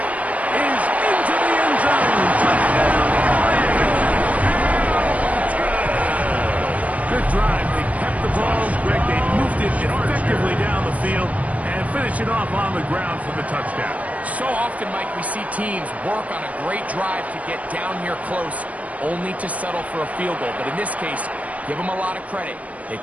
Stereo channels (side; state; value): left; late; 0.068 ms